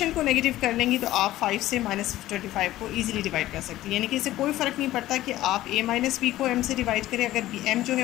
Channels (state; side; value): quieter; right; 15.2 dB